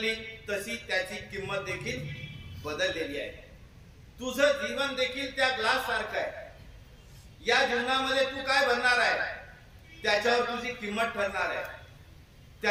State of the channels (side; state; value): both; identical; correlation 1.00